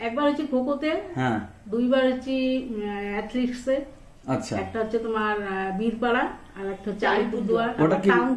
একবার হচ্ছে খোখোতে, হ্যাঁ 2 বার হচ্ছে অ্যাথলেটিক্সে। আচ্ছা, একটা হচ্ছে তোমার বীরপাড়া, আর একটা হচ্ছে আলিপুরদুয়ার, ওটা কি?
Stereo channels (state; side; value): identical; both; correlation 1.00